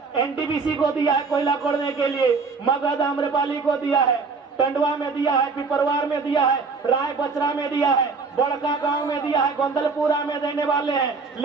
एनटीपीसी को दिया है कोयला खोदने के लिए, मगध आम्रपाली को दिया है, टंडवा में दिया है, पिपरवार में दिया है, राय बचरा में दिया है, बड़का गांव में दिया है, गोंदलपुरा में देने वाले हैं,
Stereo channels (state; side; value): quieter; left; 4.6 dB